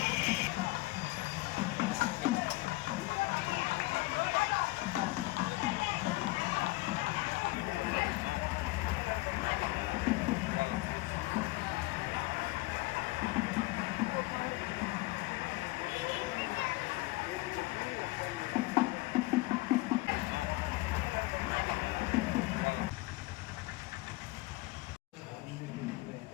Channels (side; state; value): right; quieter; 21.3 dB